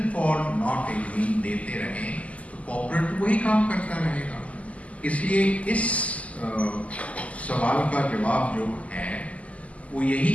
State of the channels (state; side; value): late; right; 0.068 ms